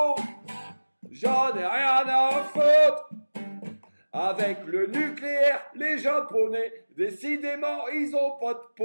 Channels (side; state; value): both; inverted; correlation -1.00